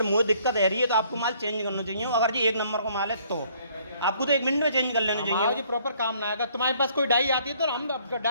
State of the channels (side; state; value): both; inverted; correlation -0.63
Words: मुझे दिक्कत है रही है तो आपको माल चेंज करना चाहिए। अगर जी 1 नंबर का माल है तो आपको तो 1 मिनट में चेंज कर लेना हमारा चाहिए। जी प्रॉपर काम ना है। अगर तुम्हारे पास कोई डाई आती है तो हम